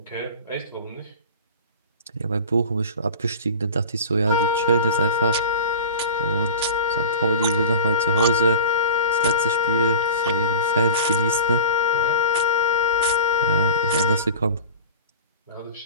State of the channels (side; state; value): both; inverted; correlation -0.34